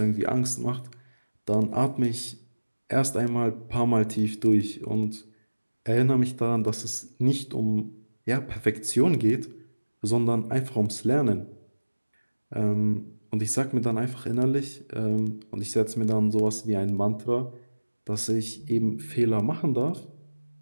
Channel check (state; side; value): inverted; both; correlation -1.00